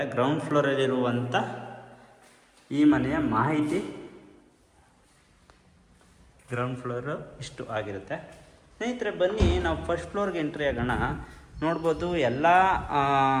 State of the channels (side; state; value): both; identical; correlation 1.00